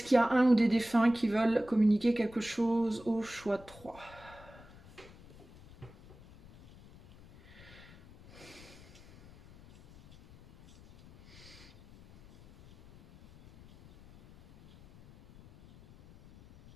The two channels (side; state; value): left; noise; rumble, 22 dB below the sound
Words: qu'il y a un ou des défunts qui veulent communiquer quelque chose au choix 3?